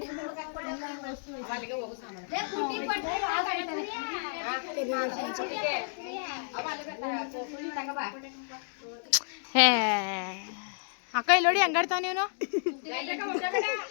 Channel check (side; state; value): right; silent; digital silence